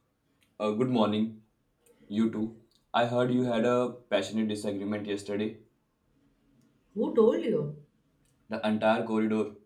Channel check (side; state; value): both; identical; correlation 1.00